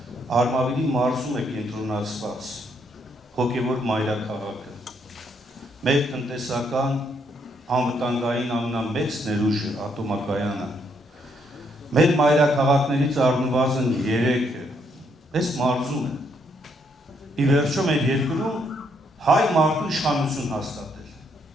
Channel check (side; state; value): both; normal; correlation 0.73